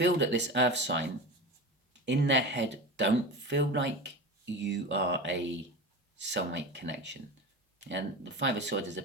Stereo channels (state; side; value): normal; both; correlation 0.28